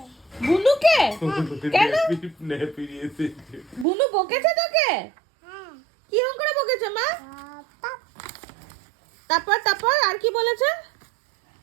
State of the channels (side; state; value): left; drops out; at 3.9 s